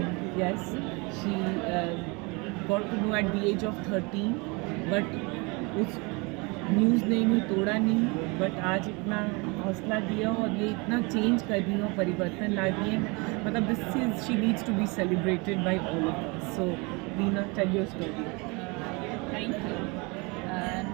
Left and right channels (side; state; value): left; quieter; 28.3 dB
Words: yes, she got to know at the age of 13, but उस न्यूज़ ने इन्हें तोड़ा नहीं, बट आज इतना हौसला दिया और ये इतना चेंज कर रही हो, परिवर्तन ला रही है। मतलब this is, she needs to be celebrated by all of us. So Leena, tell your story. Thank you.